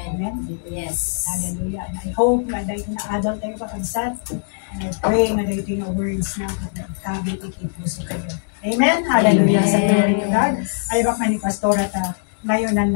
Amen. Yes. Hallelujah. And I hope na dahil na-adult tayo kakabsat, and I pray na dahil ito yung words na kabit ikipuso kayo. Amen. Hallelujah. Amen. Sa glory to God. Ay baka ni Pastora ta ngayon ang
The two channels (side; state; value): right; silent; digital silence